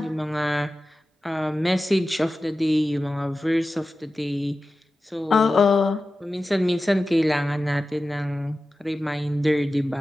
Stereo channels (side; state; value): both; normal; correlation 0.94